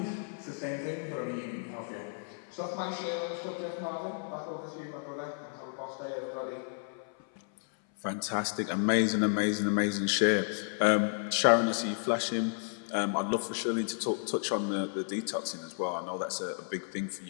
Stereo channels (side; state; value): right; silent; 56 dB below the other